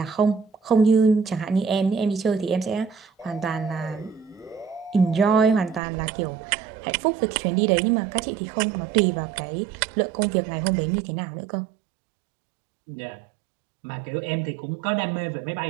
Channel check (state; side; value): drops out; left; at 5.8 s